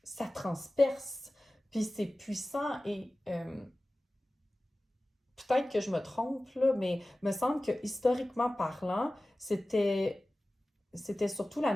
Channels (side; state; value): both; normal; correlation 0.97